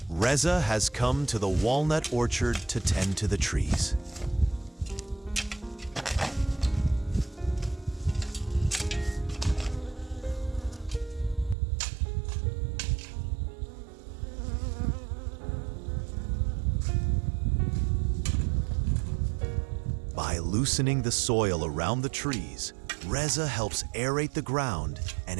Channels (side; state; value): left; drops out; at 11.6 s